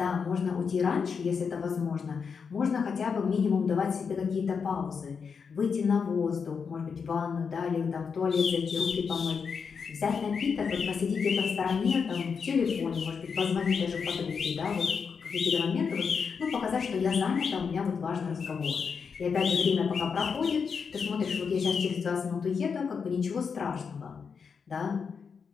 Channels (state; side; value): quieter; right; 5.9 dB